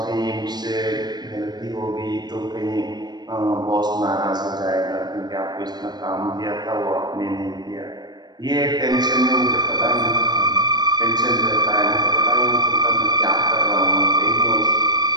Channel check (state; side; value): late; left; 0.20 ms